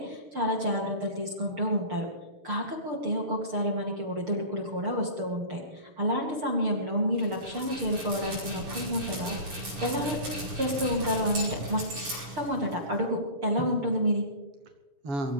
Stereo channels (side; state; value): left; late; 6.9 ms